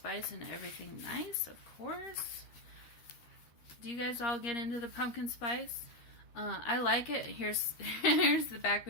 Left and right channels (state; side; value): late; right; 13 ms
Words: and everything nice, of course. Do you guys all get into the pumpkin spice? I like it. Here's the back